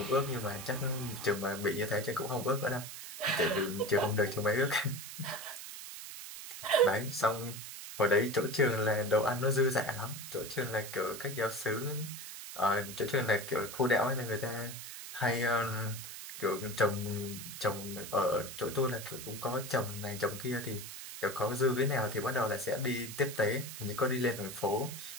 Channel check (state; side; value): noise; right; hiss, 10 dB below the sound